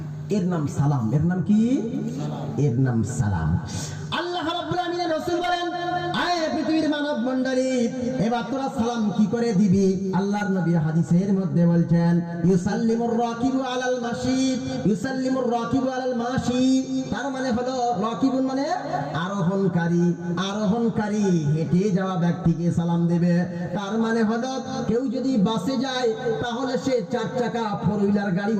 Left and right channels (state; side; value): identical; both; correlation 1.00